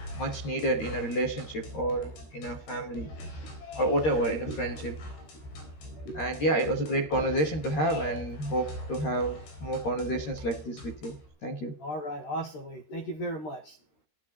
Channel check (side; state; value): right; late; 13 ms